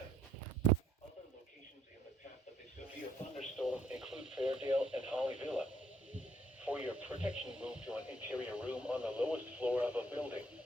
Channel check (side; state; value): both; normal; correlation 0.66